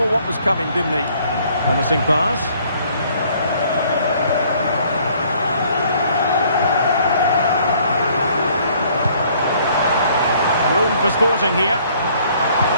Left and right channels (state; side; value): inverted; both; correlation -0.61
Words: what was coming, didn't he? Promising pass. Room for Sporting here.